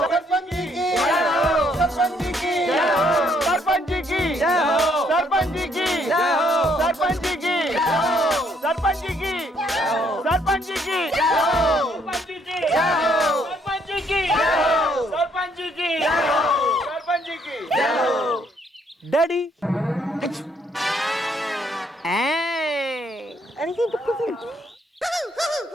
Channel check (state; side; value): normal; both; correlation 0.69